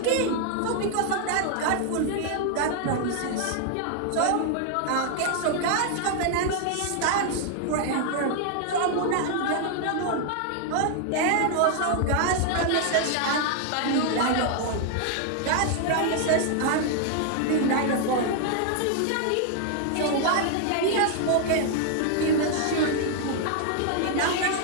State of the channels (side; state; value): both; different; correlation 0.00